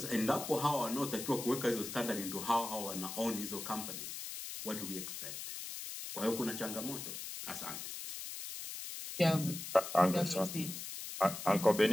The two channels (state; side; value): noise; left; hiss, 7 dB below the sound